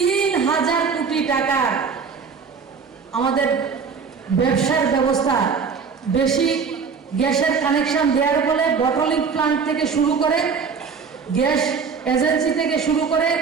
কোটি টাকা আমাদের ব্যবসার ব্যবস্থা, বেশি গ্যাসের কানেকশন দেওয়ার ফলে বটলিং প্লান্ট থেকে শুরু করে, গ্যাস এজেন্সি থেকে শুরু করে,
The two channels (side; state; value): left; quieter; 5.7 dB